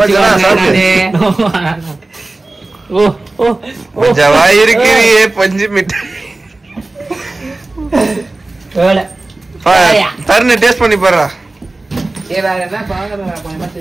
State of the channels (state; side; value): quieter; left; 3.0 dB